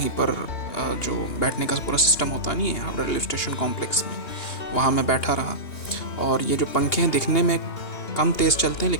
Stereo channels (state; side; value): late; right; 2.8 ms